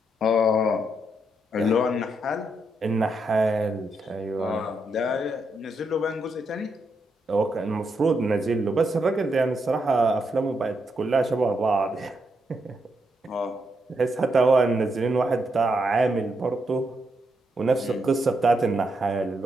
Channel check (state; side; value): normal; both; correlation 0.81